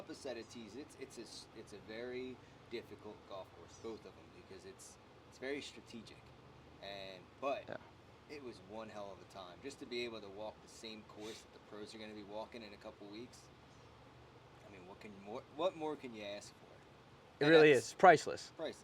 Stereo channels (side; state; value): both; identical; correlation 1.00